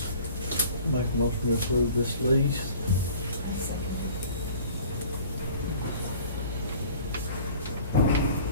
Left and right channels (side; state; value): both; inverted; correlation -0.47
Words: a motion to approve this lease.